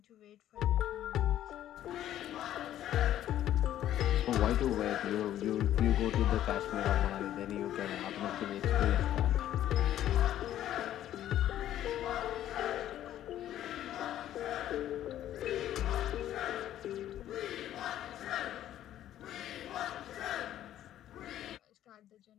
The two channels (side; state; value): right; quieter; 12.1 dB